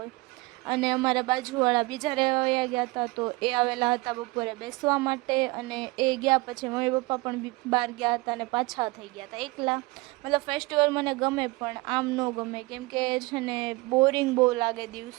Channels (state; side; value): quieter; left; 23.4 dB